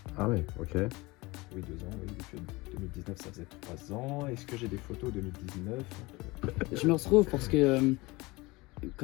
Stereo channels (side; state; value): right; quieter; 22.8 dB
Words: Ah ouais, ok. Oui, 2 ans, oui. Depuis 2019, ça faisait 3 ans. Est-ce que j'ai des photos 2019? Je me retrouve parce que